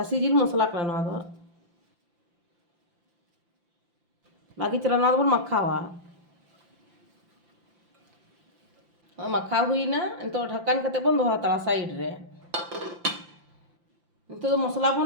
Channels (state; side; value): late; left; 5.8 ms